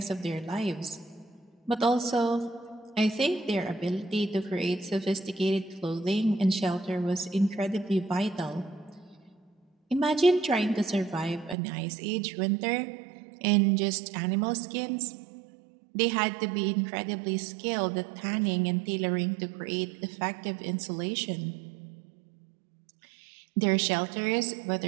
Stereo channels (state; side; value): drops out; left; at 11.6 s